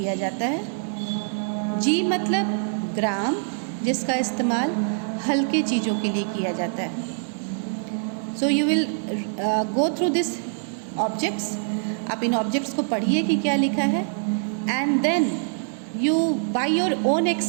जाता है. जी मतलब ग्राम, जिसका इस्तेमाल हल्के चीज़ों के लिए किया जाता है. So you will go through this objects. आप इन ऑब्जेक्ट्स को पढ़िए कि क्या लिखा है and then you by your own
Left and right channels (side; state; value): left; silent; 62 dB below the other